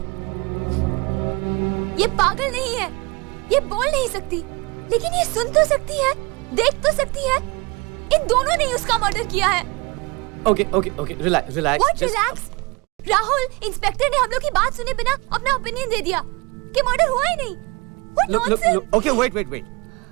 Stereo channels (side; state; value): left; quieter; 25.7 dB